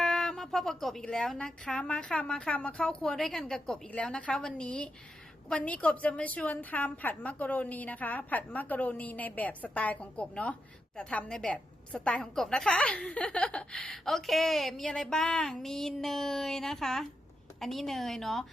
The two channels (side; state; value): both; normal; correlation 0.85